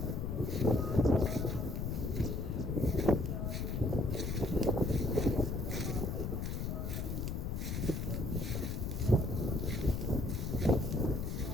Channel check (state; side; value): noise; left; rumble, 2 dB below the sound